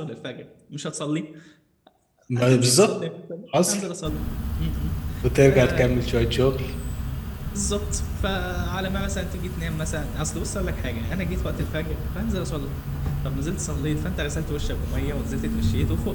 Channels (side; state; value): both; identical; correlation 1.00